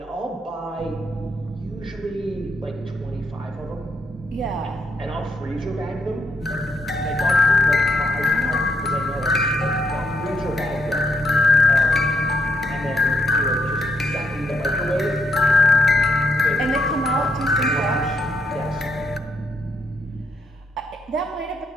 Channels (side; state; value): both; normal; correlation 0.77